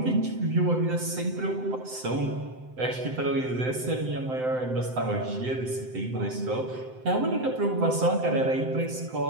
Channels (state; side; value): late; left; 7.8 ms